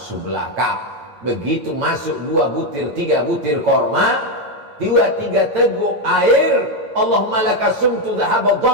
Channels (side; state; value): left; late; 8.8 ms